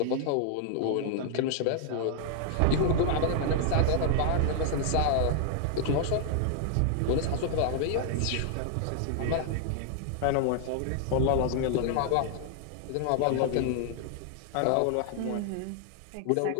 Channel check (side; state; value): both; different; correlation -0.01